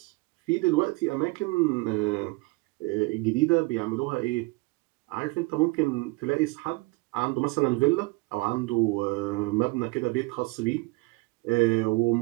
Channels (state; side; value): quieter; left; 25.3 dB